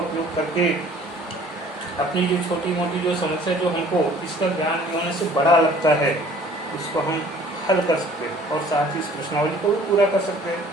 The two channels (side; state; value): both; normal; correlation 0.53